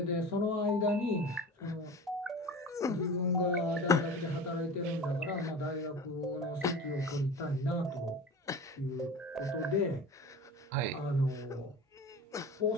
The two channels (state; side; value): normal; both; correlation 0.35